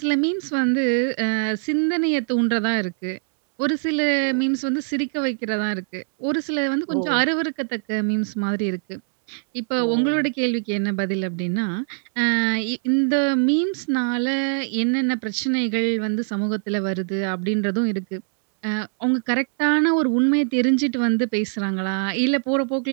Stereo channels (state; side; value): silent; left; 64 dB below the other